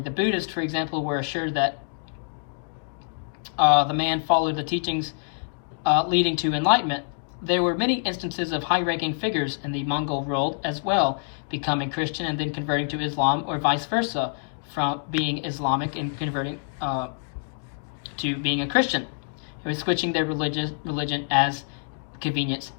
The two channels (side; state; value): right; silent; digital silence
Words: Buddhists, for example, were assured that the man followed the teachings leading to enlightenment. There were many instances of high-ranking figures in the Mongol world as well, becoming Christian and then converting to Islam, or vice versa, from being Islamic and converting to being a Christian. It was switching their religion as convenience